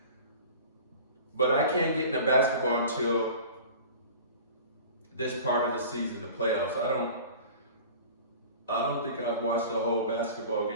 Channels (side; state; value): both; inverted; correlation -0.41